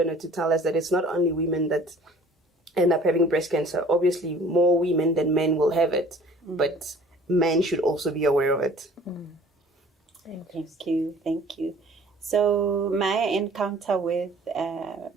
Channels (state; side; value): normal; both; correlation 0.50